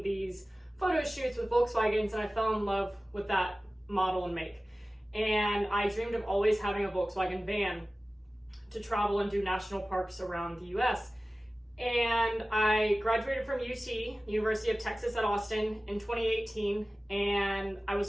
these photo shoots with Volkswagens, and I fell in love with that model and make. And I dreamed of always having a Volkswagen van to travel and do national parks around the US. And I graduated from UT, the University of Texas at Austin, in 2018, and I was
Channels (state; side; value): normal; both; correlation 0.97